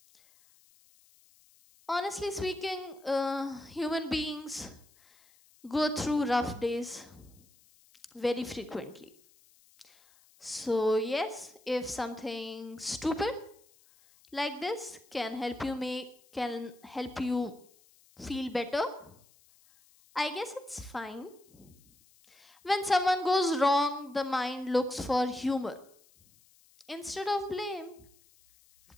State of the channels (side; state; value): left; noise; hiss, 29 dB below the sound